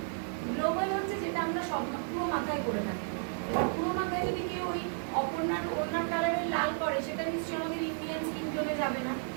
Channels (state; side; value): silent; left; 56 dB below the other